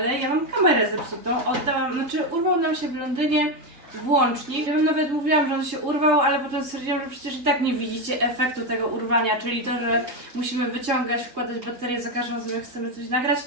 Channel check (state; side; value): late; left; 3.6 ms